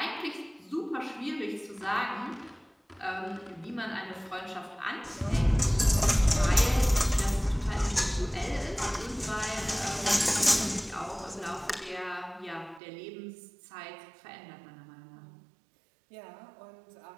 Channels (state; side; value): drops out; left; at 12.8 s